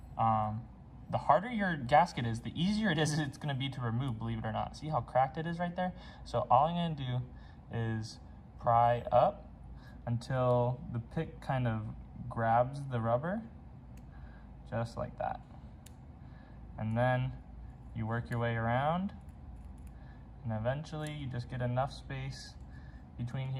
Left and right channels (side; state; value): both; identical; correlation 1.00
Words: The harder your gasket is, the easier it is it's going to be to remove, believe it or not. See how cracked it is right there? So all I'm going to do is pry up until the pick kind of grabs the rubber, just like that. And then you work your way around, and eventually you just get enough space between